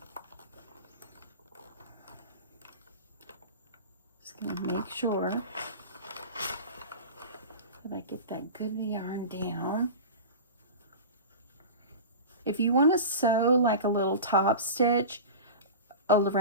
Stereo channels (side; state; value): both; inverted; correlation -0.30